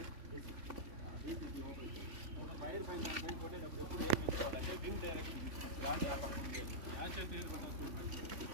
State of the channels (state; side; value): late; left; 3.5 ms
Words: ఫైర్ పైన పైన కొట్టేటప్పుడు ఎప్పుడు ఏం తీసుకోవాలంటే వింగ్ డైరెక్షన్,